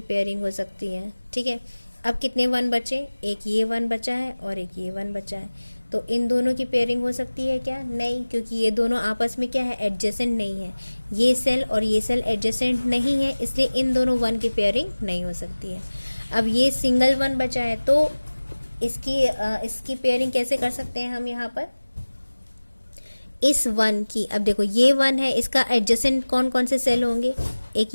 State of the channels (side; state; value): both; inverted; correlation -1.00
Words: पेयरिंग हो सकती है, ठीक है। अब कितने 1 बचे, एक ये 1 बचा है और एक ये 1 बचा है, तो इन दोनों की पेयरिंग हो सकती है क्या, नहीं, क्योंकि ये दोनों आपस में क्या है, एडजेसेंट नहीं है। ये सेल और ये सेल एडजेसेंट नहीं है, इसलिए इन दोनों 1 की पेयरिंग नहीं हो सकती है। अब ये सिंगल 1 बचा है, तो इसकी पेयरिंग कैसे कर सकते हैं हम यहाँ पर, इस 1 की। अब देखो ये 1 है, इसका एडजेसेंट कौन कौन से सेल होंगे, एक